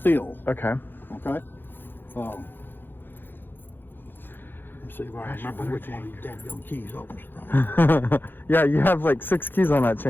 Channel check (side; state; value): right; late; 0.098 ms